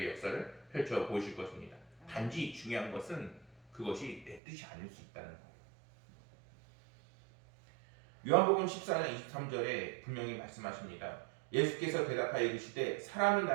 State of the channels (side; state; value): left; drops out; at 4.4 s